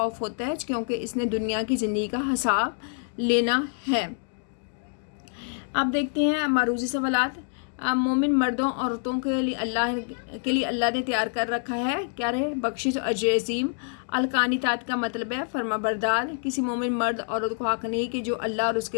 ہوتا ہے کیونکہ اس نے دنیا کی زندگی کا حساب لینا ہے. اب دیکھتے ہیں معروضی سوالات. مومن مردوں عورتوں کے لیے اللہ نے تیار کر رکھا ہے کیا رہے؟ بخشش اور اجر عظیم. القانتات کا مطلب ہے فرما بردار. کسی مومن مرد عورت کو حق نہیں کہ جو اللہ اور اس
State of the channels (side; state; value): right; silent; 59 dB below the other